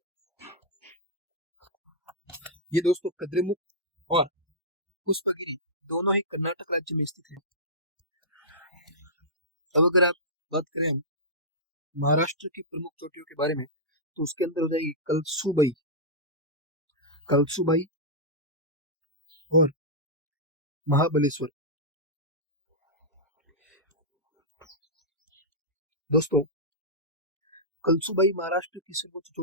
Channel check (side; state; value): both; normal; correlation -0.13